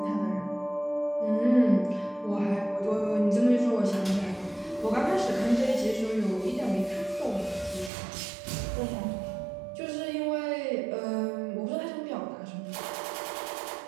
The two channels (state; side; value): drops out; left; at 7.9 s